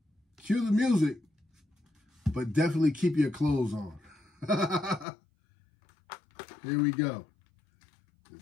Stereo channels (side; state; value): right; drops out; at 5.1 s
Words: Cue the music, but definitely keep your clothes on. Here we go.